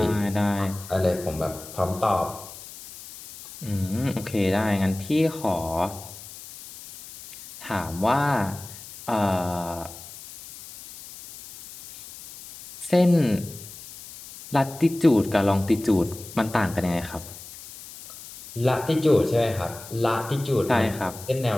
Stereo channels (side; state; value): left; noise; hiss, 15 dB below the sound